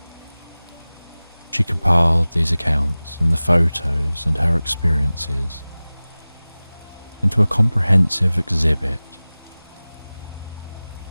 She compiled these accounts and the photos and her experiences into a comprehensive exhibit.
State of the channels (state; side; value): inverted; both; correlation -0.98